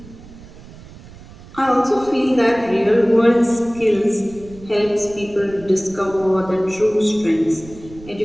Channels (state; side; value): noise; right; rumble, 19 dB below the sound